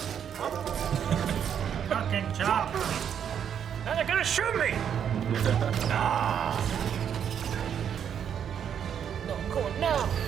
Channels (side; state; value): left; quieter; 8.5 dB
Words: Fucking chop. Now they're gonna shoot me! No, I'm going now.